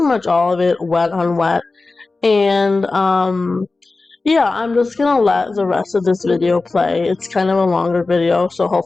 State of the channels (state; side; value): quieter; right; 3.6 dB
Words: much all of it wet on wet. And yeah, I'm just gonna let the rest of this video play. It's kind of a longer video, so